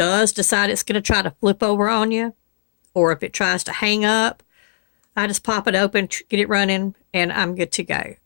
decide it's going to try to flip over on you, or if it tries to hang up. I just pop it open, get it running, and I'm good to go.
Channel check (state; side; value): silent; right; 65 dB below the other